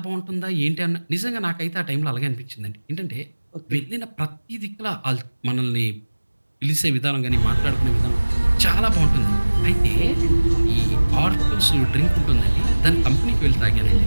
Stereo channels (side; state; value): both; inverted; correlation -1.00